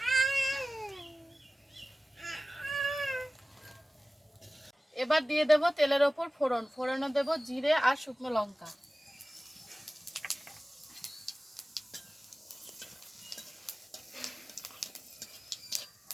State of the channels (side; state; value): both; normal; correlation 0.97